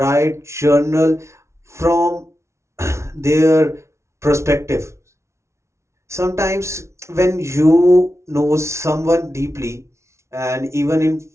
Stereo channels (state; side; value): late; left; 0.13 ms